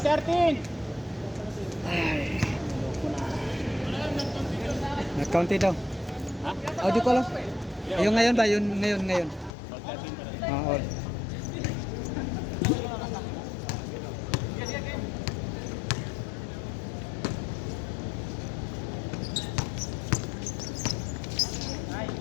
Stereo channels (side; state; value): right; drops out; at 9.5 s